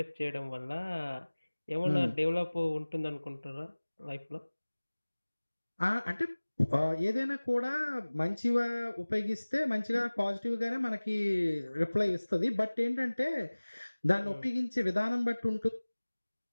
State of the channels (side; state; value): both; inverted; correlation -1.00